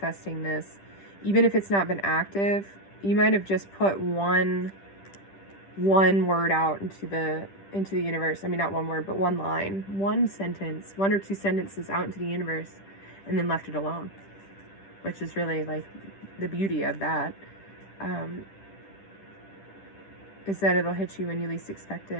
this. Even if it's not been active, you might have just put one word out into the universe. I mean, not one word, but one line, one sentence, one or two sentences out into the universe, and then left it alone, which is really like the beauty of that, is that it'll hit you when you least expect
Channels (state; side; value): late; right; 10 ms